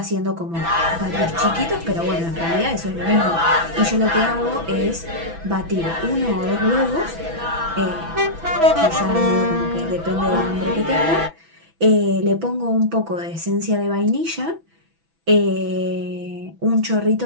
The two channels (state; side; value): late; left; 6.0 ms